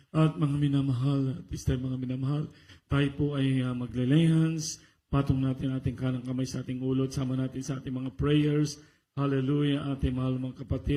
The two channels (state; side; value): identical; both; correlation 1.00